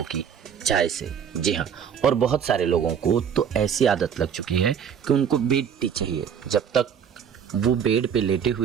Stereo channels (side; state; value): left; quieter; 7.8 dB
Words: की चाय से। जी हाँ, और बहुत सारे लोगों को तो ऐसी आदत लग चुकी है कि उनको बेड टी चाहिए। जब तक वो बेड पे लेटे